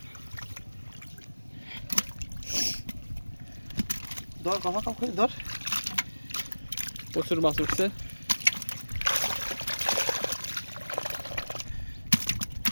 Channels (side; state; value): both; inverted; correlation -1.00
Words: ধর কথা কাউ ধর প্রচুর মাছ উঠছে